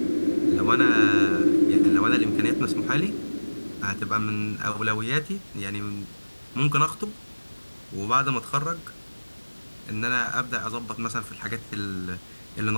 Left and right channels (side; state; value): both; inverted; correlation -1.00